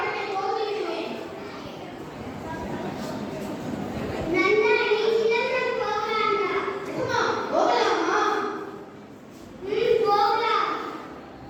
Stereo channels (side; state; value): both; identical; correlation 1.00